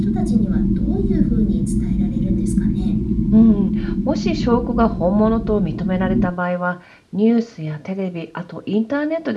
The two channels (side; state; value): both; identical; correlation 1.00